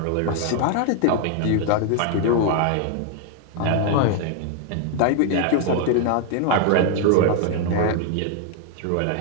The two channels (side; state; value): both; different; correlation 0.00